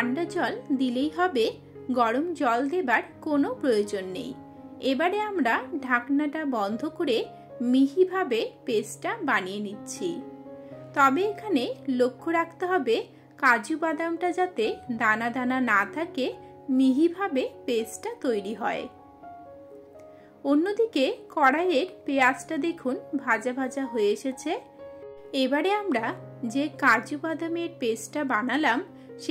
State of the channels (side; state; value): both; identical; correlation 1.00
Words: জল দিলেই হবে, গরম জল দেবার কোনো প্রয়োজন নেই। এবারে আমরা ঢাকনাটা বন্ধ করে মিহিভাবে পেস্টটা বানিয়ে নিচ্ছি। তবে এখানে লক্ষ্য রাখতে হবে কাজু বাদামটা যাতে দানা দানা না থাকে, মিহিভাবে পেস্টটা তৈরি হয়। অন্যদিকে কড়াইয়ের পেঁয়াজটা দেখুন ভাজা ভাজা হয়ে এসেছে। এবারে আমরা যে কাজু বাদামের পেস্টটা বানালাম